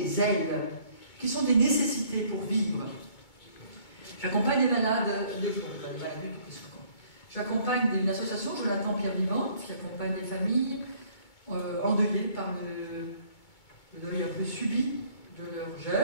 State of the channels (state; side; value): late; right; 2.2 ms